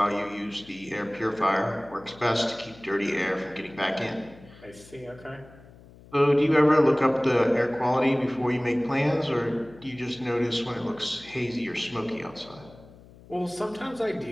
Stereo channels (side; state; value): left; noise; hum, 22 dB below the sound